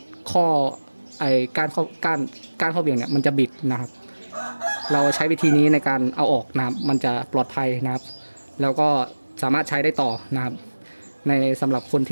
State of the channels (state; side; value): inverted; both; correlation -1.00